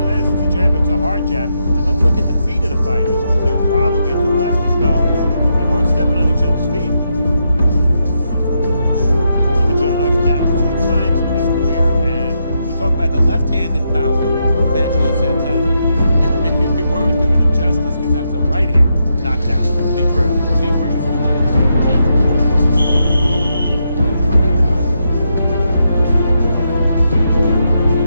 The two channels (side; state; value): both; inverted; correlation -0.82